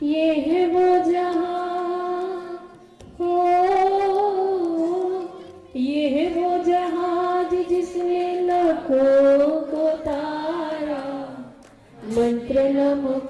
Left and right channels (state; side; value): identical; both; correlation 1.00